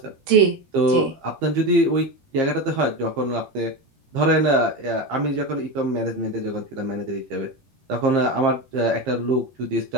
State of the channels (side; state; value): left; late; 15 ms